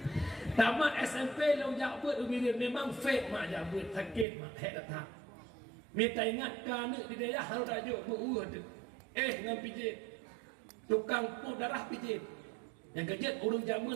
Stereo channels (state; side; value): drops out; left; at 4.2 s